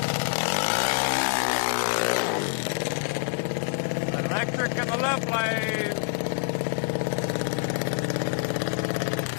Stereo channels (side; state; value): right; silent; 61 dB below the other